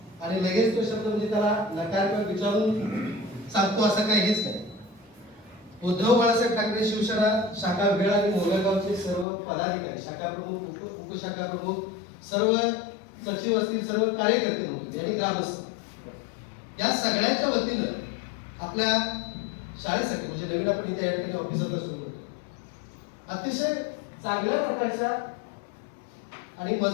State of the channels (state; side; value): drops out; right; at 9.2 s